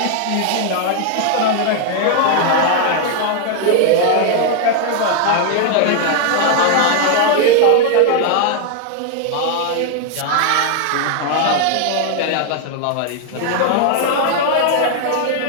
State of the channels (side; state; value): both; different; correlation 0.00